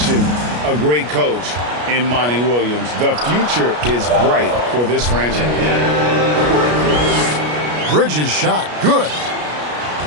a great coach in Monty Williams. The future is bright for this franchise. Bridges shot. Good.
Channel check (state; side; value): late; left; 33 ms